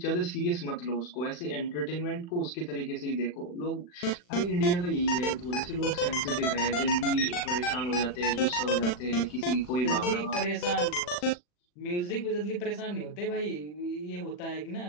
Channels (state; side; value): late; right; 40 ms